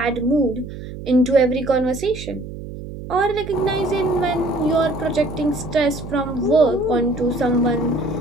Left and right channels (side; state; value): right; noise; hum, 11 dB below the sound